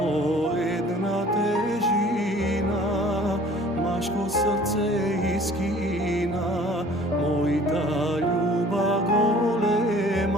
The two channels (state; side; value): normal; both; correlation 0.50